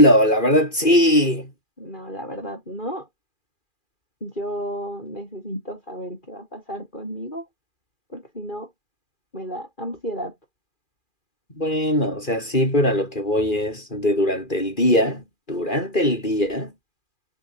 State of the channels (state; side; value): late; right; 2.4 ms